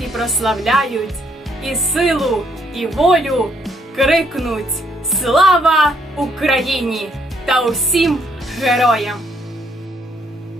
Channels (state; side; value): normal; both; correlation 0.70